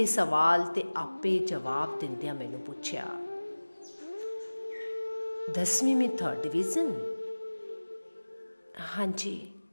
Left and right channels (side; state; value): both; inverted; correlation -1.00